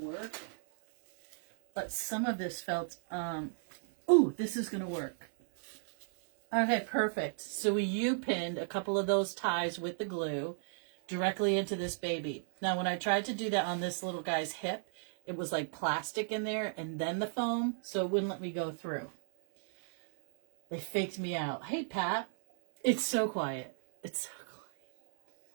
But some of this felt, ooh, this is going to work. Okay, perfect. So we U-pinned a couple of those ties with the glue directly into this baby. Now, when I tried to do that on this little guy's hip, it was like plastic in there and then the foam, so it wouldn't let me go through. They faked me out. Hey, Pat. It's so quiet. It's so quiet.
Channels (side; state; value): left; silent; 55 dB below the other